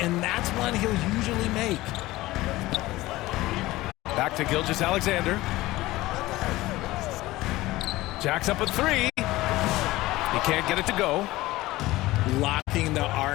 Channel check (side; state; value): right; quieter; 18.2 dB